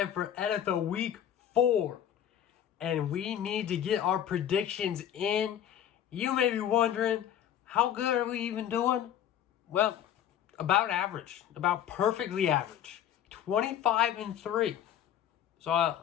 for NFL Week 4. And we need to get our predictions in. You may be wondering, how good are we even doing? Well, about average. About perfectly average. 25-3.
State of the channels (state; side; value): quieter; right; 10.1 dB